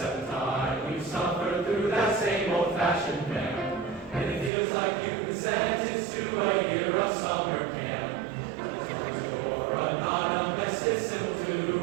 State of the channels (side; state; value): left; drops out; at 4.5 s